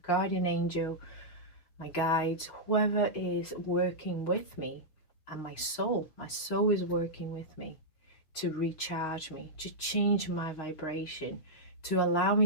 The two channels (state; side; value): late; right; 6.3 ms